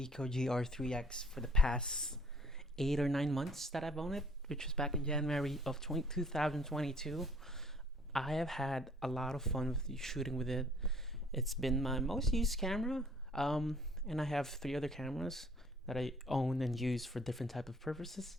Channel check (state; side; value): normal; both; correlation 0.57